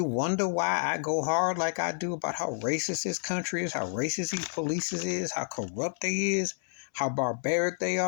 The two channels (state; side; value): silent; right; 58 dB below the other